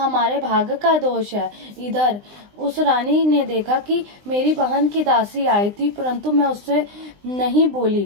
भाग्य का दोष है। इधर उस रानी ने देखा कि मेरी बहन की दासी आई थी, परंतु मैं उससे नहीं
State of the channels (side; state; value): left; late; 20 ms